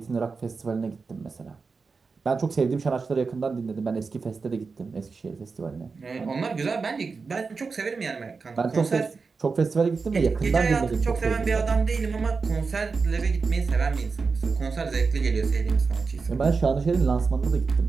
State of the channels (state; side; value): quieter; left; 4.7 dB